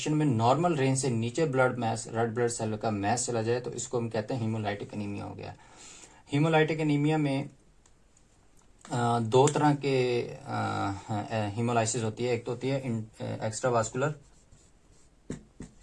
में नॉर्मल रेंज से नीचे रेड ब्लड सेल का मैस चला जाए, तो इसको हम कहते हैं हीमोलाइटिक एनीमिया हो गया। हीमोलाइटिक एनीमिया में 2 तरह के हीमोलाइसिस होती है। एक तो होती है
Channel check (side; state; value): both; identical; correlation 1.00